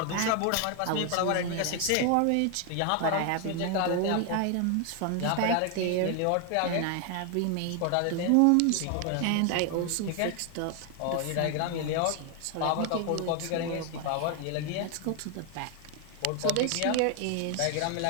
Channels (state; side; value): different; both; correlation 0.00